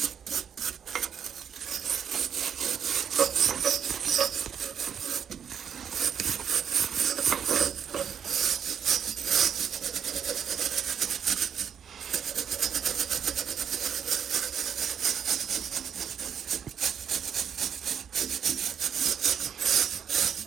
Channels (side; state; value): left; quieter; 8.0 dB